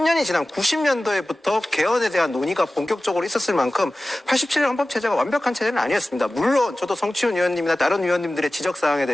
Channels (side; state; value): both; normal; correlation 0.96